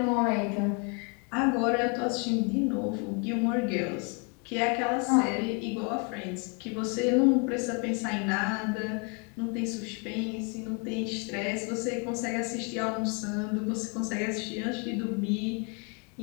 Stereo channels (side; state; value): right; quieter; 34.9 dB